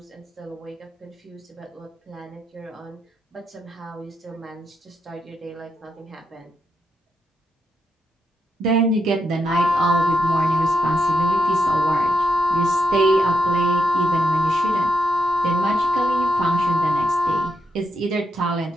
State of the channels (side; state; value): both; normal; correlation 0.82